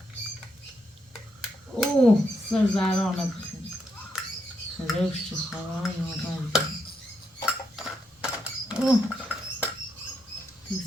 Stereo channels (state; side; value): normal; both; correlation 0.79